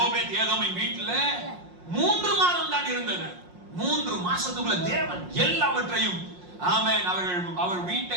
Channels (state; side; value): late; left; 5.6 ms